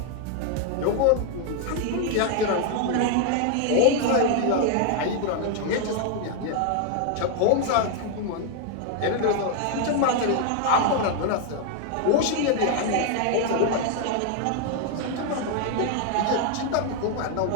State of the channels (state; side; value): different; both; correlation 0.00